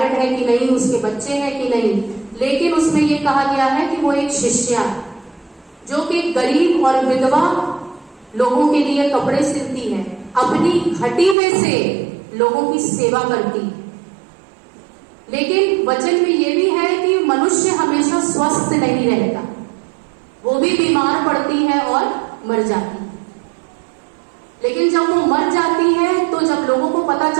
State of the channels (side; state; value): left; drops out; at 11.4 s